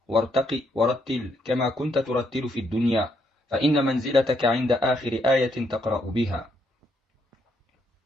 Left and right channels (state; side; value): normal; both; correlation 0.74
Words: وارتقي ورتل كما كنت ترتل في الدنيا فإن منزلتك عند آخر آية تقرأ بها.